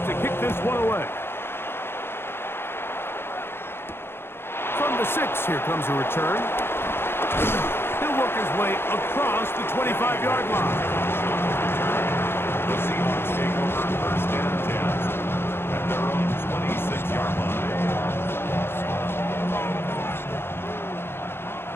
to kick this one away. From the 6, here comes a return. He'll work his way across the 25-yard line. The Seahawks take over first and 10 at their own 26-yard line.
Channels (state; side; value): late; right; 0.11 ms